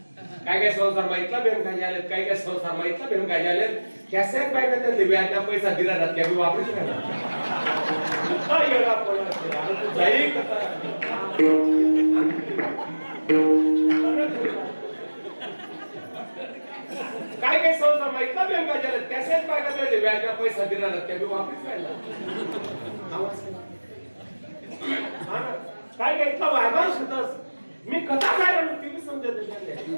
काय काय संसार माहितला बेम काय झाले, काय काय संसार माहितला बेम काय झाले. कॅसे पाहिजे त्यांनी व्याजना पैसा दिला जात त्या वापरूच नाही काय येणार पण तू जाई कसा काय काय संसार माहितला बेम काय झाले. कॅसे पाहिजे त्यांनी व्याजना पैसा दिला जात त्या वापरूच नाही काय काय इतका वायबार होतास. मी कथा काय म्हणतो ती समजत नाही.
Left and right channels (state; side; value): inverted; both; correlation -1.00